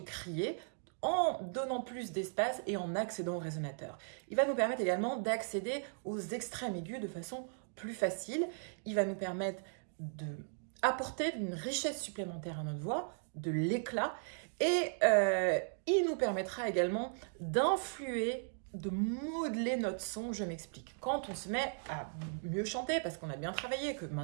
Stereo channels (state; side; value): silent; left; digital silence